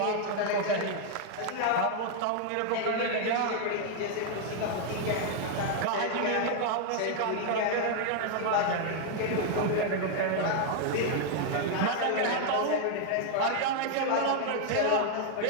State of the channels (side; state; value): both; different; correlation 0.00